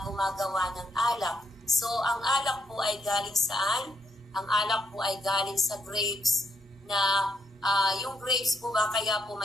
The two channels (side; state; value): both; normal; correlation 0.76